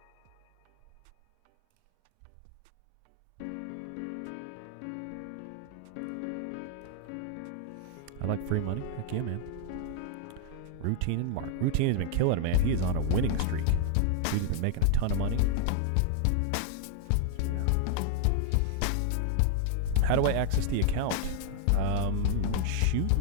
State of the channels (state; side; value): different; both; correlation 0.00